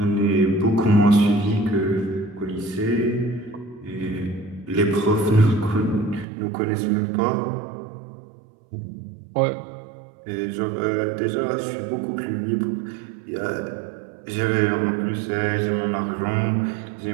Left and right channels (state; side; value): drops out; left; at 6.2 s